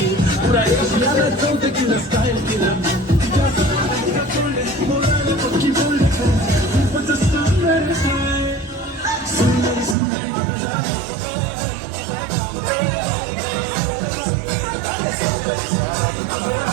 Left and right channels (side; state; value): left; drops out; at 10.0 s